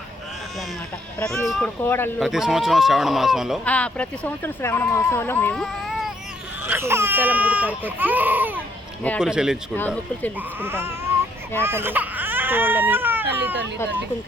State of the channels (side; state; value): both; normal; correlation 0.69